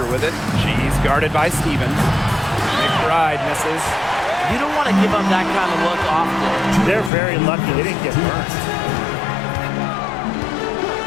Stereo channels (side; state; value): right; drops out; at 7.1 s